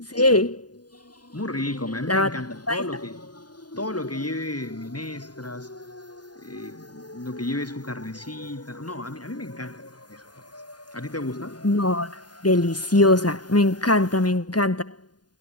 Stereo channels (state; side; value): late; right; 0.69 ms